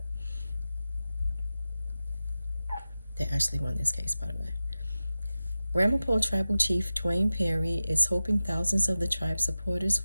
They actually won this case, by the way. Ramapough Tribal Chief Dwayne Perry is hoping thousands of the tribe's supporters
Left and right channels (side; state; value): both; inverted; correlation -0.95